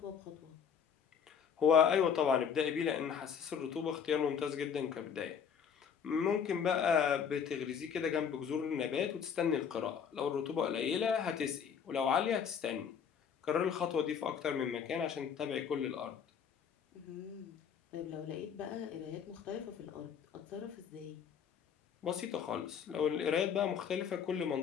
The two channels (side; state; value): right; quieter; 7.4 dB